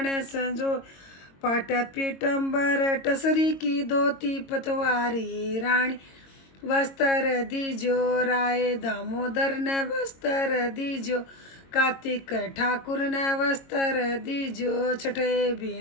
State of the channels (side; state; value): right; late; 22 ms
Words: संजो पाट पीटम्बर टसरी की धोती पतवारी रानी वस्त्र दीजो राय दामोदर ने वस्त्र दीजो कार्तिक ठाकुर ने वस्त्र दीजो छठे